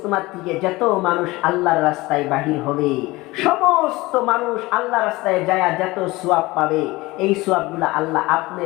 থেকে যত মানুষ আল্লাহর রাস্তায় বাহির হবে, সমস্ত মানুষ আল্লাহ রাস্তায় যায় যত সওয়াব পাবে, এই সওয়াবগুলো আল্লাহ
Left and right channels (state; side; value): quieter; right; 20.8 dB